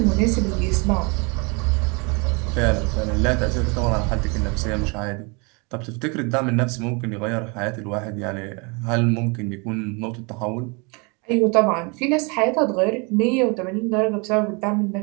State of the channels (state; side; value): quieter; left; 31.0 dB